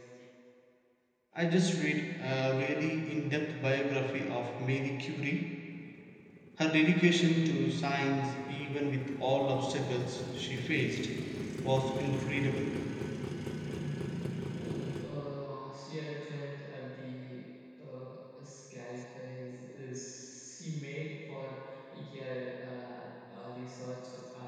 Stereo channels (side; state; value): both; identical; correlation 1.00